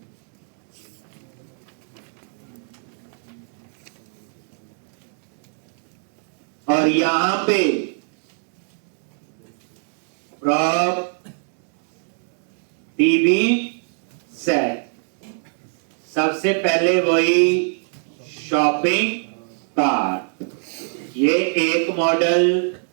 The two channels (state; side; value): silent; left; 57 dB below the other